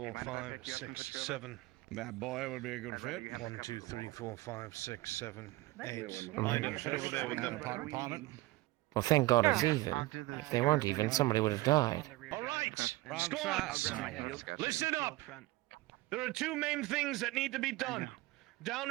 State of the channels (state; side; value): quieter; left; 19.5 dB